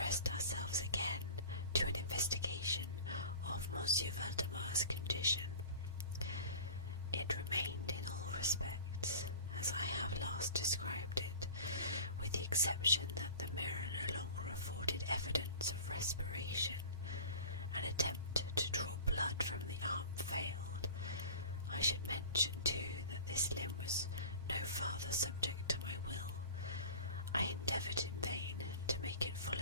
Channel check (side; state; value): both; inverted; correlation -0.39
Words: ourselves again to an investigation of Monsieur Valdemar's condition. It remained in all respects as I have last described it, with the exception that the mirror no longer afforded evidence of respiration. An attempt to draw blood from the arm failed. I should mention, too, that this limb was no farther subject to my will. I endeavoured in vain to make it